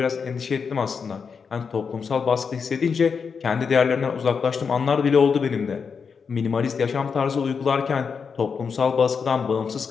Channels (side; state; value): right; quieter; 5.9 dB